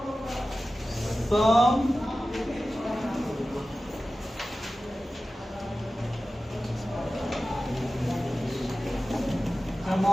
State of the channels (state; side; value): normal; both; correlation 0.95